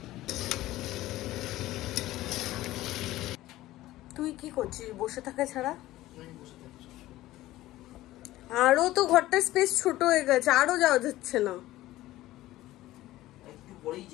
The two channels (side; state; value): right; quieter; 16.2 dB